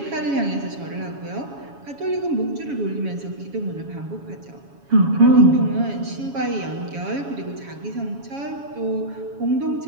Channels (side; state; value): left; late; 7.2 ms